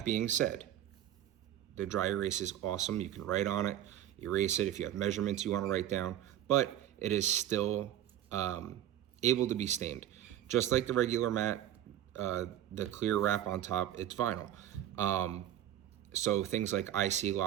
being said, the dry erase is awesome. You can write on it, erase it if you have measurements you want to write down, but it is still able to be stained. Just like the regular mat, the clear wrap on top, it's vinyl. So things like IC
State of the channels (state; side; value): quieter; left; 11.8 dB